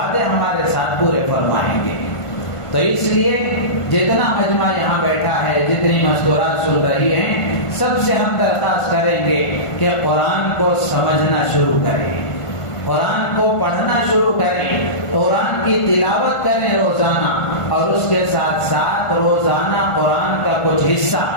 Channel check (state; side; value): late; right; 1.5 ms